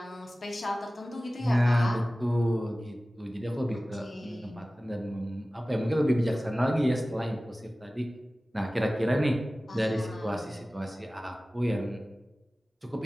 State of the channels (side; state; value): both; normal; correlation 0.97